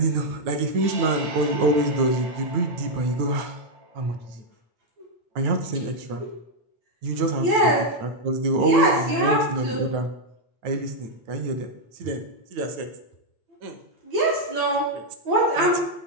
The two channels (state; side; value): late; left; 9.2 ms